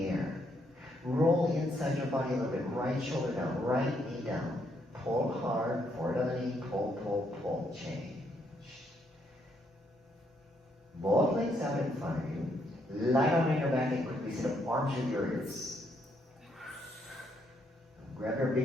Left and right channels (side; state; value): both; normal; correlation 0.74